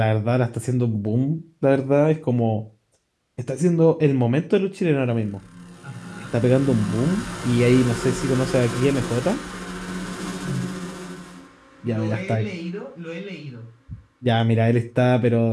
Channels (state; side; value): identical; both; correlation 1.00